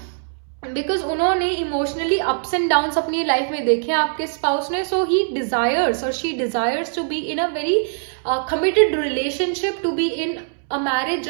because उन्होंने emotionally ups and downs अपनी life में देखे आपके स्पाउस ने. So he desires or she desires to be in a very committed relationship, to be in a marriage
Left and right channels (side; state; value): left; silent; 65 dB below the other